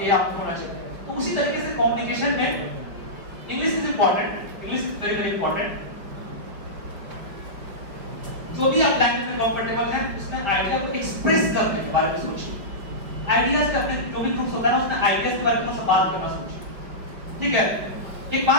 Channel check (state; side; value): late; left; 5.1 ms